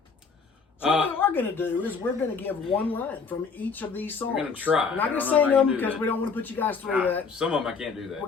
So what we're going to do is we're going to give one line from each of these songs. We're going to try. We're not I going to don't know sing if I can them do because that. we don't want to put you guys through that. Some of them I can't do that.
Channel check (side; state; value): right; quieter; 5.2 dB